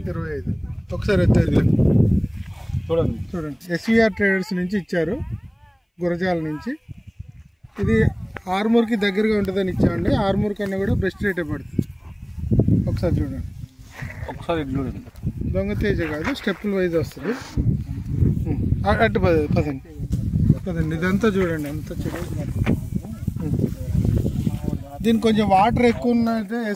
ఒకసారి చూడండి ఎస్వీఆర్ ట్రేడర్స్ నుంచి ఇచ్చారు, గురజాల నుంచి. ఇది ఆర్మూర్కి దగ్గరగా ఉంటుందని ఇచ్చామండి. ఆర్మూర్ కన్నా కూడా బెస్ట్ రేటే పడుతుంది. ఒకసారి చూడండి. దొంగ తేజ కాదు, స్టెప్పుల వైజ్ వస్తుంది. అటు పదండి. ఇదంతా చూడండి ఎంత చూడండి. దీనికి కొంచెం వాటర్ ఎక్కువ ఉన్నట్టే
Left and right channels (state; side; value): identical; both; correlation 1.00